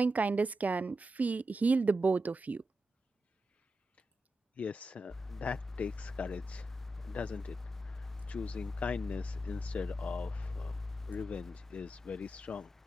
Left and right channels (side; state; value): both; normal; correlation 0.89